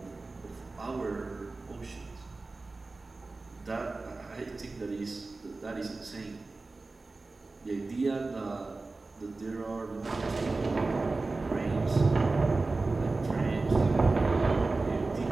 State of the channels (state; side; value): quieter; left; 3.5 dB